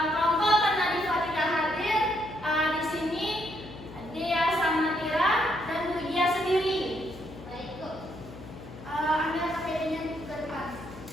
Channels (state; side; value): noise; left; hum, 15 dB below the sound